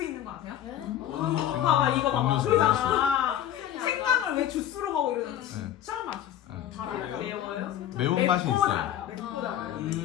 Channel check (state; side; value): quieter; right; 11.3 dB